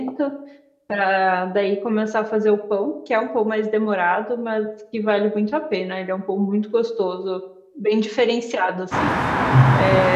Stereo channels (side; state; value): both; identical; correlation 1.00